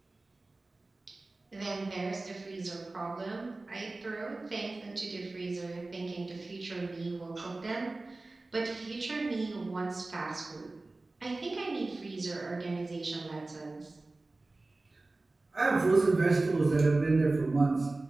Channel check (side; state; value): left; quieter; 3.2 dB